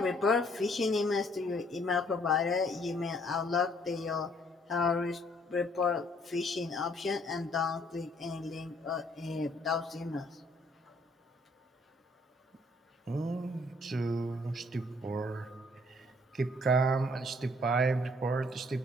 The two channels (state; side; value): normal; both; correlation 0.63